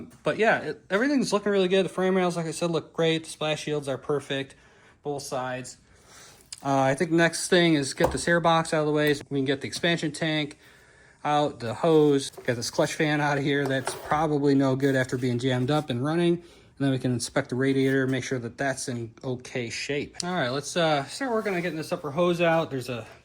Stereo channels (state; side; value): identical; both; correlation 1.00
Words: yeah, everything's looking really good. The frame rails, like I said, look great. The splash shields are perfect, both sides. I think the next thing is get this air box out of the way so we can get the expansion tank out, the hose, get this clutch fan out of here. That's probably no good after being jammed up and running. And then we can inspect the radiator, make sure that that's in okay shape. All right, let's start working on getting this upper hose out. There's a